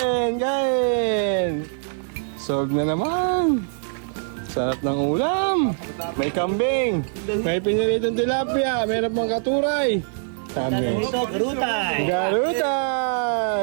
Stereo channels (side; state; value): left; silent; digital silence